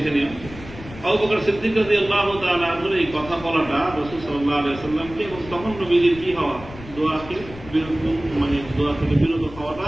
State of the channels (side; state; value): left; noise; rumble, 16 dB below the sound